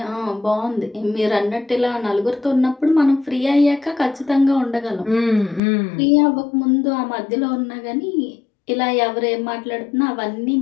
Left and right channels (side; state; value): right; drops out; at 5.6 s